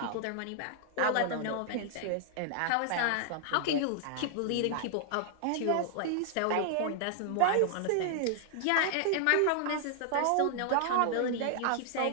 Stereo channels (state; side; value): different; both; correlation 0.00